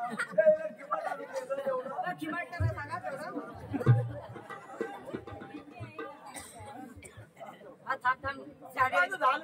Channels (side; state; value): both; identical; correlation 1.00